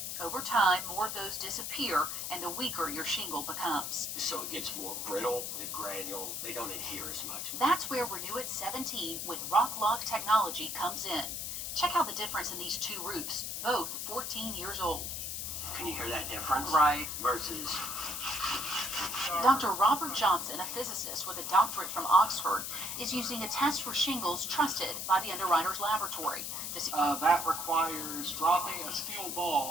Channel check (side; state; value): left; noise; hiss, 4 dB below the sound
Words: Over time, more of those disappear, and the weaker your shingle becomes. So it gets more brittle, the granules, they don't adhere as much. That's where Renew It 17 with Rock Lock technology comes in. Check out the difference in these two roofs, both 14 years old. Can you hear that difference? Right. Versus... Dr. Robert Johnson, a physicist with a doctorate from Oxford, is using a test for shingles trusted by the Underwriters Laboratory. To see that requires dropping a steel